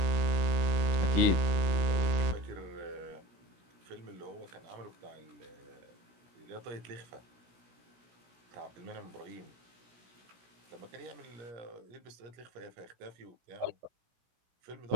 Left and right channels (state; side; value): late; left; 16 ms